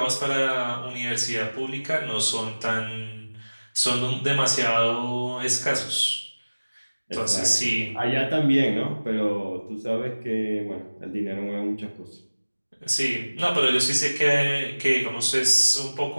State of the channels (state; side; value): inverted; both; correlation -1.00